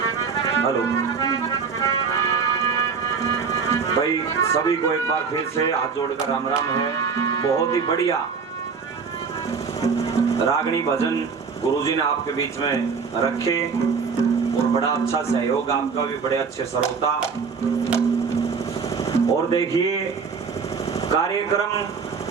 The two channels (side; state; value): left; quieter; 5.5 dB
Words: हेलो भाई, सभी को एक बार फिर से हाथ जोड़कर राम राम है। बहुत ही बढ़िया रागनी भजन गुरुजी ने आपके बीच में रखे और बड़ा अच्छा सहयोग आपका भी, बड़े अच्छे श्रोता। और देखिए, कार्यक्रम